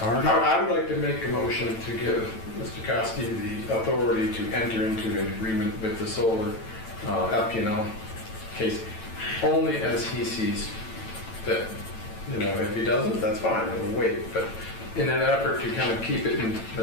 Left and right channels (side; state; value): right; late; 9.0 ms